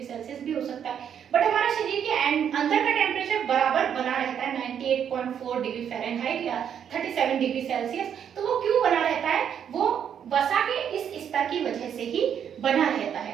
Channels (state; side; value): quieter; left; 8.6 dB